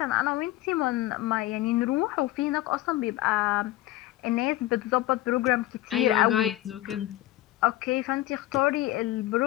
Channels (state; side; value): quieter; right; 15.9 dB